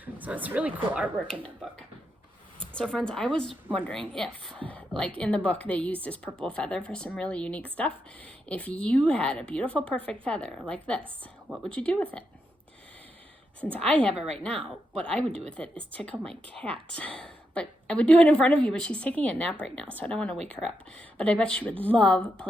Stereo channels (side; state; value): both; normal; correlation 0.83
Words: So it's really cool artwork in that book. So friends, I was wondering if, like in the book, they used this purple feather for some really unique stuff. If you had a beautiful, perfect feather like this, what would you do with it? Since I have it right now, what I would do with it is tickle my cat. But I would do it in front of you, but she's taking a nap right now, so I don't want to wake her up. But I bet she would love